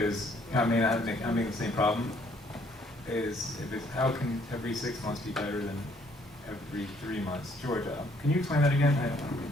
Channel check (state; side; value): normal; both; correlation 0.64